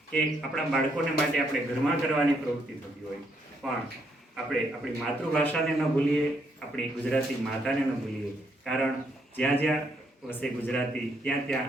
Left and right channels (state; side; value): normal; both; correlation 0.74